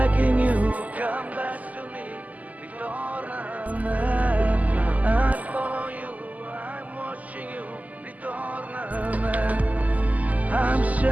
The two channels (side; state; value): left; late; 0.077 ms